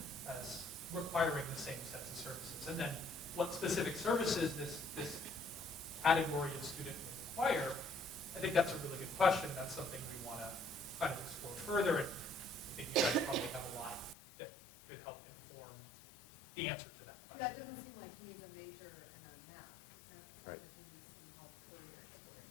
as requiring the same sets of services. And then what specific services this category of student will require, I think that's a really good question. That's something we want to kind of explore further. And I think you guys probably have a lot that could help inform the answer to that question. Yeah, it doesn't seem like he needs a major and a math.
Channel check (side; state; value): right; drops out; at 14.2 s